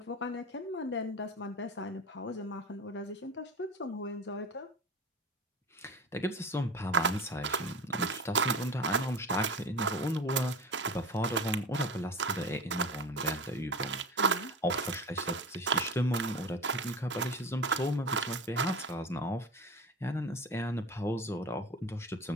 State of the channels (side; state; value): both; normal; correlation 0.31